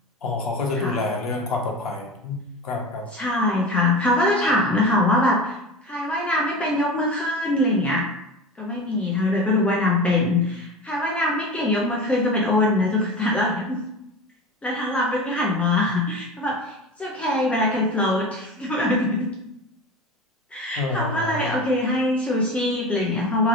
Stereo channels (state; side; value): normal; both; correlation 0.30